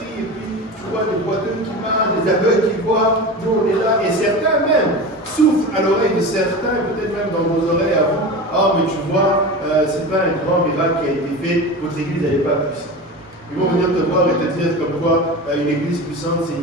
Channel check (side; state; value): both; normal; correlation 0.29